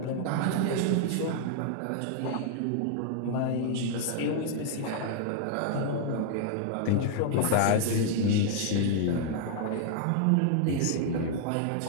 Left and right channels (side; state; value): both; different; correlation 0.00